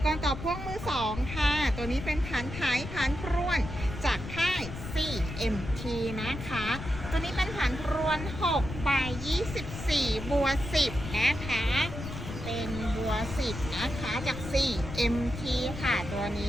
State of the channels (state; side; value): noise; left; rumble, 8 dB below the sound